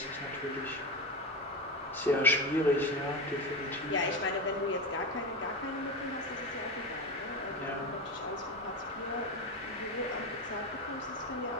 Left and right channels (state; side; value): normal; both; correlation 0.21